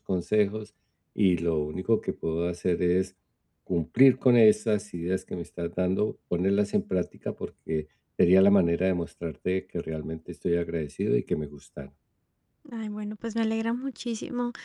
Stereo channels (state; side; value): identical; both; correlation 1.00